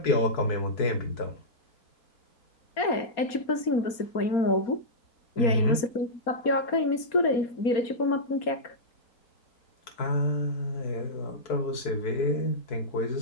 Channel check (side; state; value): right; late; 4.3 ms